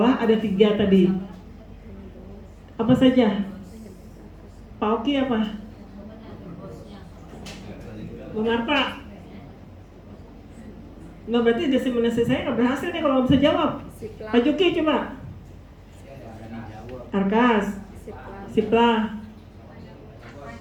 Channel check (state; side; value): identical; both; correlation 1.00